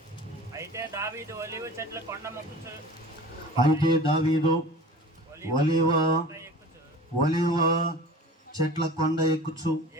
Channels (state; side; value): normal; both; correlation 0.40